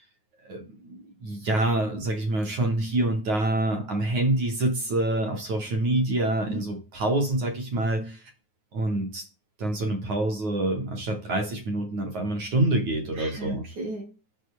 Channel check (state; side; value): late; left; 9.4 ms